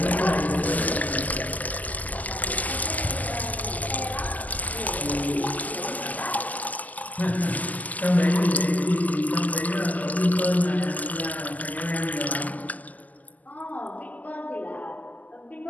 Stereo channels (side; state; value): right; late; 0.079 ms